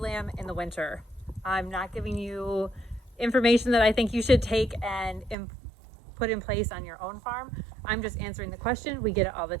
in the winter? I'm not giving you information that I think you should take and put in place on your own farm. I'm just answering the question. We get it all the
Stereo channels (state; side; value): drops out; left; at 5.4 s